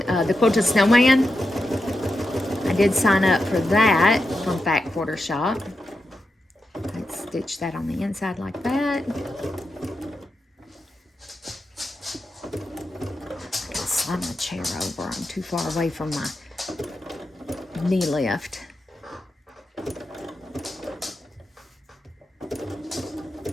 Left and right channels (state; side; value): normal; both; correlation 0.88